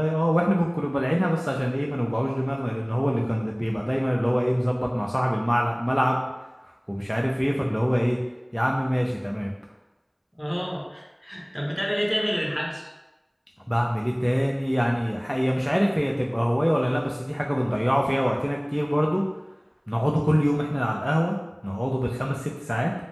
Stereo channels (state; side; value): identical; both; correlation 1.00